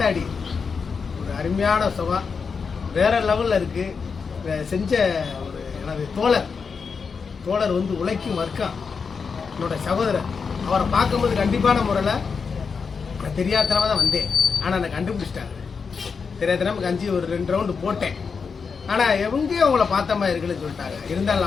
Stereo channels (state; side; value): quieter; right; 5.5 dB